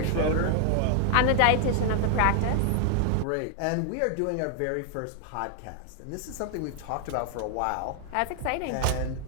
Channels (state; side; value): different; both; correlation 0.00